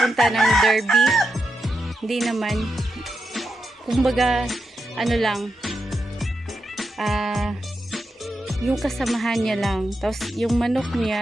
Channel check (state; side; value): normal; both; correlation 0.87